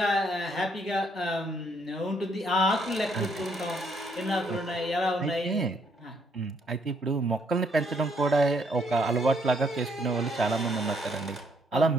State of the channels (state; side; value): normal; both; correlation 0.70